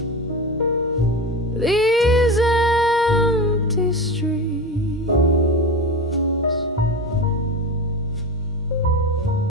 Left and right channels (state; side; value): normal; both; correlation 0.24